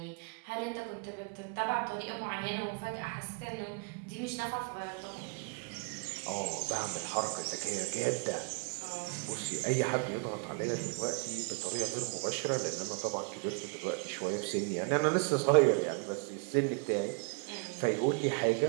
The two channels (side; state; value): left; quieter; 37.9 dB